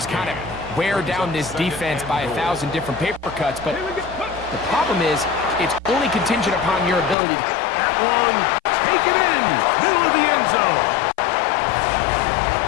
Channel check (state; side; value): drops out; right; at 7.2 s